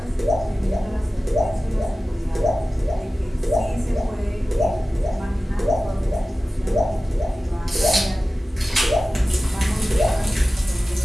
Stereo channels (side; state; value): both; normal; correlation 0.96